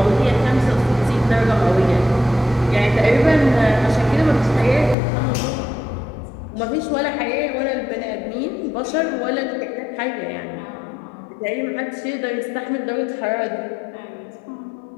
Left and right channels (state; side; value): drops out; right; at 5.0 s